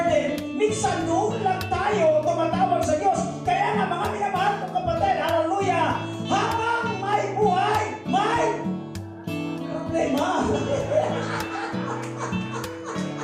minsan doon lang tayo tumatawag sa Diyos. Kaya nga, mga minamahal kong kapatid, hallelujah, habang may buhay, may problema.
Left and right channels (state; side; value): identical; both; correlation 1.00